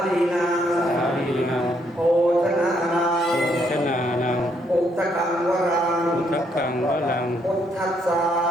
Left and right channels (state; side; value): normal; both; correlation 0.72